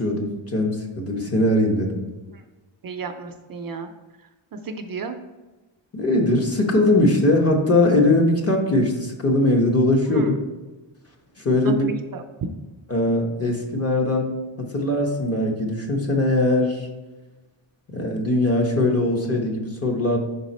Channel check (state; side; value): normal; both; correlation 0.24